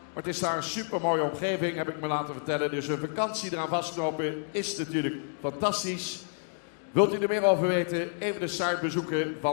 Maar het is daar een super mooie omgeving, heb ik me laten vertellen. Dus een vakantie eraan vastknopen is natuurlijk fantastisch. Wilt u er meer over weten? Even de site bezoeken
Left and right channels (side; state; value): right; silent; digital silence